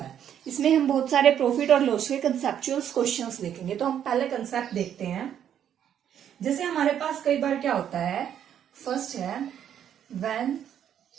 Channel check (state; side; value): quieter; left; 9.6 dB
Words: इसमें हम बहुत सारे प्रॉफिट और लॉस के कंसेप्चुअल क्वेश्चंस देखेंगे। तो हम पहले कंसेप्ट देखते हैं। जैसे हमारे पास कई बार क्या होता है, फर्स्ट है when